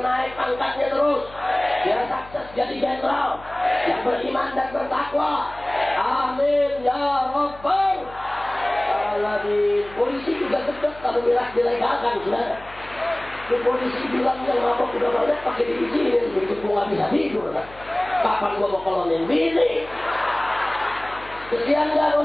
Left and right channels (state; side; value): noise; left; hum, 20 dB below the sound